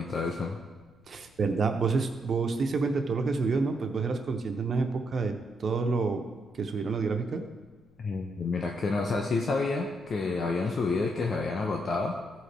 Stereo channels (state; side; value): noise; left; rumble, 29 dB below the sound